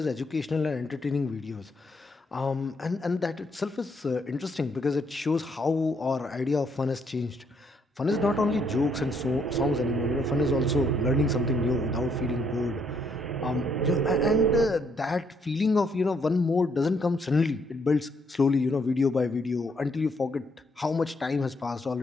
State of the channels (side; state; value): both; normal; correlation 0.71